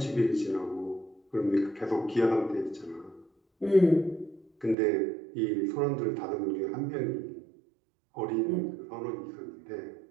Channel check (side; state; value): left; drops out; at 4.8 s